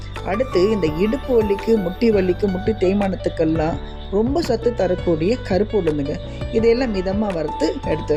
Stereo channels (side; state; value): both; identical; correlation 1.00